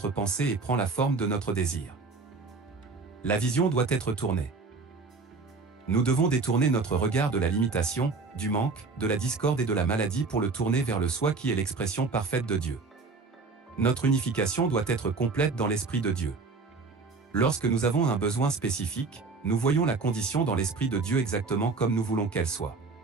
pensée et prend la forme de notre désir. La vision doit être tournée. Nous devons détourner notre regard de la limitation, du manque, de la discorde et de la maladie pour le tourner vers le soi qui est l'expression parfaite de Dieu. Notre unification doit être complète dans l'Esprit de Dieu. Lorsque nous avons un besoin spécifique, nous voyons la condition dans l'Esprit de Dieu exactement comme nous voulons qu'elle soit.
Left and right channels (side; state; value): left; quieter; 4.1 dB